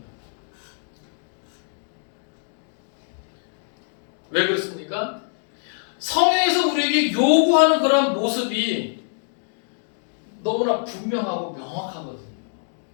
왜 그렇습니까? 성경에서 우리에게 요구하는 그런 모습이 너무나 분명하고 명확하거든요.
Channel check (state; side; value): silent; right; digital silence